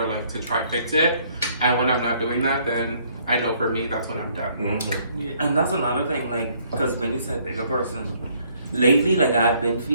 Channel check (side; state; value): both; inverted; correlation -0.65